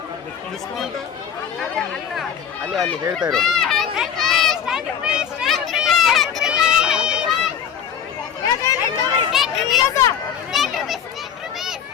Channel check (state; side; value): quieter; right; 8.2 dB